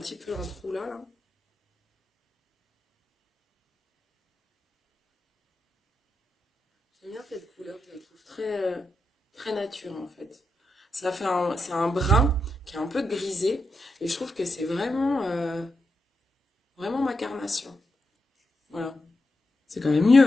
peu un trou là, là. J'aime bien cette couleur, je la trouve très nature en fait. Ça fait c'est un brun qui est un peu grisé et je trouve que c'est vraiment ma carnation. Voilà, c'est quand même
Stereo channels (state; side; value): normal; both; correlation 0.86